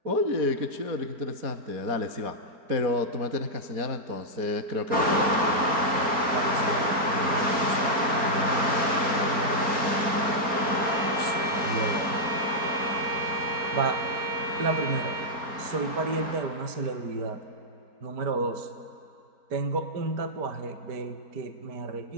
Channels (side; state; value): left; late; 4.4 ms